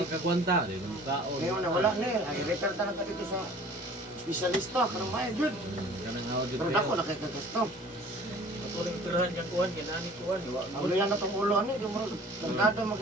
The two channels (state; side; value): normal; both; correlation 0.48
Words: kagwanta. Hindi na kaon. Ngayon na wala na eh. Ay, refer talaga dito sa espesyalista. Karang maya, yun. Kanang hawad dito. Pero dako na kay kagasto. Ako rin tirahan niyang kuhan, ginani kuhan. Ang yan na itong ulo, ano, yung mga tangkado